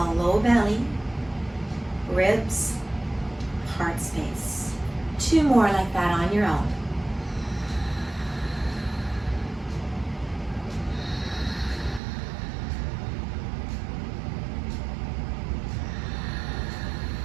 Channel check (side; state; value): left; drops out; at 12.0 s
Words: low belly, ribs, heart space. 2 more like that on your own.